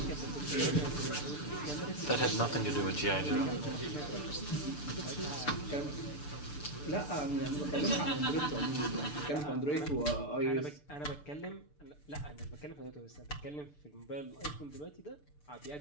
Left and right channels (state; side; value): late; right; 6.8 ms